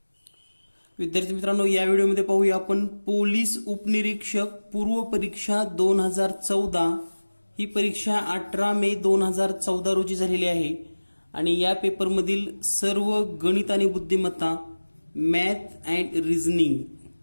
विद्यार्थी मित्रांनो, या व्हिडिओमध्ये पाहूया आपण पोलीस उपनिरीक्षक पूर्व परीक्षा 2014. ही परीक्षा 18 मे 2014 रोजी झालेली आहे आणि या पेपरमधील सर्व गणित आणि बुद्धिमत्ता, math and reasoning,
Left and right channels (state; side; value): inverted; both; correlation -1.00